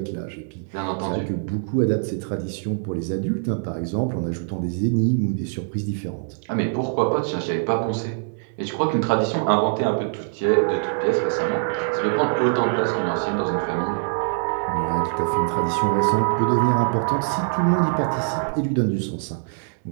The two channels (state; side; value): silent; left; digital silence